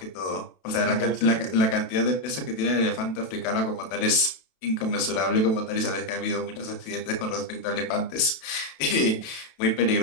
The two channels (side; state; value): right; late; 32 ms